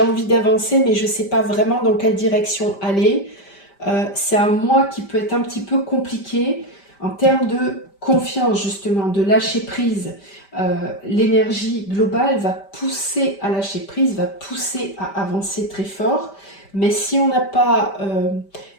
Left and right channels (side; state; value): right; late; 5.1 ms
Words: envie d'avancer mais je ne sais pas vraiment dans quelle direction aller. C'est un mois qui peut être un petit peu compliqué en termes de confiance justement, de lâcher prise. L'énergie globale va pousser à lâcher prise, va pousser à avancer très fort. Mais si on n'a pas